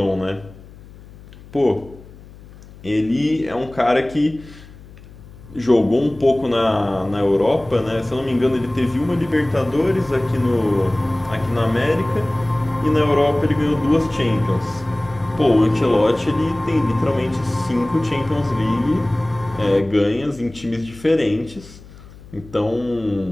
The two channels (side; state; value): left; noise; hum, 20 dB below the sound